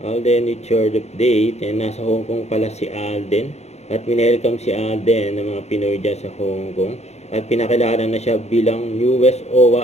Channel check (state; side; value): late; right; 0.32 ms